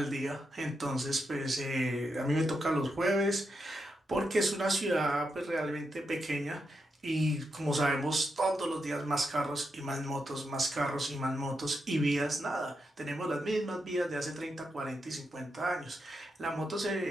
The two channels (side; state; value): both; normal; correlation 0.85